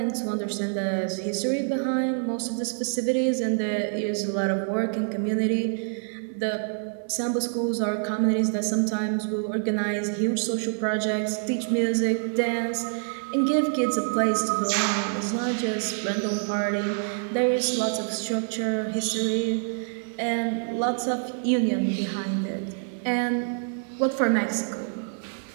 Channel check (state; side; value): silent; left; digital silence